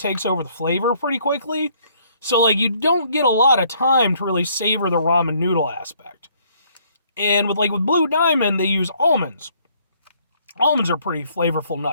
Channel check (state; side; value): inverted; both; correlation -0.65